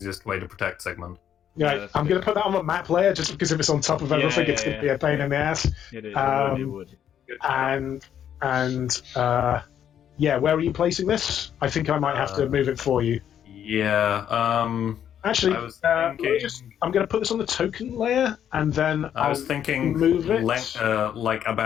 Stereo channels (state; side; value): quieter; right; 9.5 dB